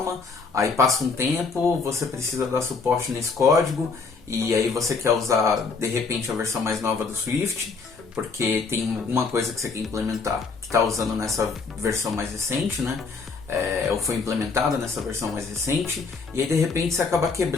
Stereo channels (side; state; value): right; quieter; 4.6 dB